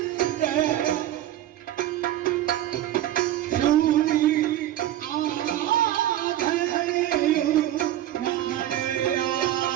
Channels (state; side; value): quieter; left; 13.0 dB